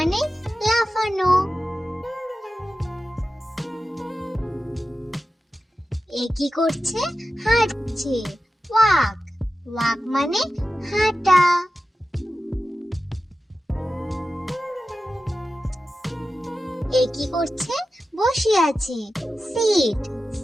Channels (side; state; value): both; normal; correlation 0.93